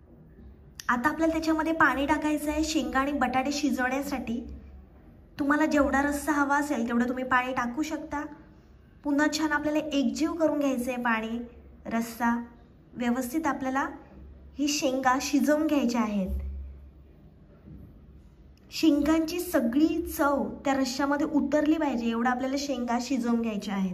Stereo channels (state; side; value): identical; both; correlation 1.00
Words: आता आपल्याला त्याच्यामध्ये पाणी टाकायचं आहे शेंगा आणि बटाटे शिजवण्यासाठी। तुम्हाला जेवढा रस्सा हवा असेल तेवढं तुम्ही पाणी टाकू शकता। पुन्हा छान आपल्याला एकजीव करून घ्यायचं आहे पाणी रस्सा। व्यवस्थित आपल्याला ही शेंगा शिजवून घ्यायच्या आहेत। शेंगांची सगळी चव त्या रश्श्यामध्ये उतरली पाहिजे एवढं आपल्याला शेंगा शिजवून घ्यायच्या